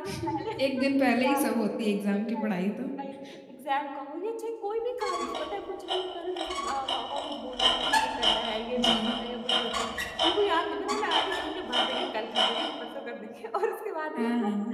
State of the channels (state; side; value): identical; both; correlation 1.00